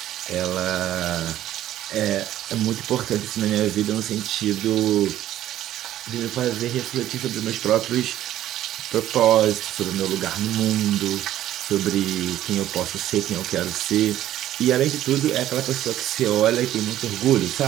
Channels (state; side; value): quieter; left; 12.9 dB